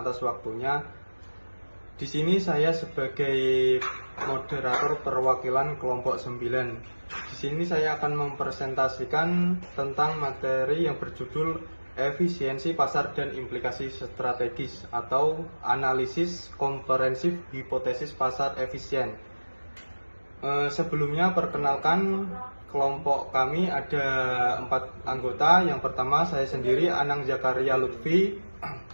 waktunya. Di sini saya sebagai moderator perwakilan kelompok 9. Di sini saya akan mempresentasikan tentang materi yang berjudul efisiensi pasar dan implikasi strategis atau analisis komprehensif hipotesis pasar efisien. Sebelumnya perkenalkan, kelompok kami ada 4 anggota. Yang pertama saya sendiri, Anang Zakaria Lutfi.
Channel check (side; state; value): both; inverted; correlation -1.00